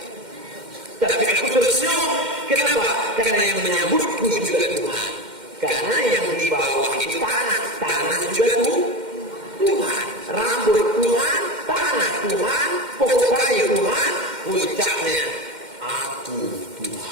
Tapi aku tersenyum. Kenapa? Karena yang menyambutku juga Tuhan. Karena yang di bawah itu tanah, tanah juga Tuhan. Rambut Tuhan, tanah Tuhan, pokok kayu Tuhan, puncaknya aku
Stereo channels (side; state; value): left; late; 2.1 ms